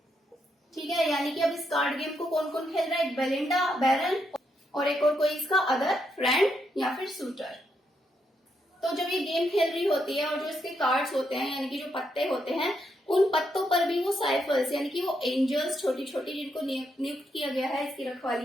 ठीक है, यानी कि अब इस कार्ड गेम को कौन कौन खेल रहा है, बेलिंडा, बैरन और एक और कोई इसका अदर फ्रेंड या फिर सूटर। तो जब ये गेम खेल रही होती है और जो इसके कार्ड्स होते हैं, यानी कि जो पत्ते होते हैं, उन पत्तों पर भी वो साइफर्स, यानी कि वो एंजल्स छोटी छोटी जिनको नियुक्त किया गया है इसकी रखवाली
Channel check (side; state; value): both; normal; correlation 0.79